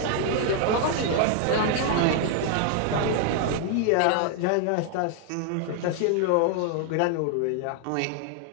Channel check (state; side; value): different; both; correlation 0.00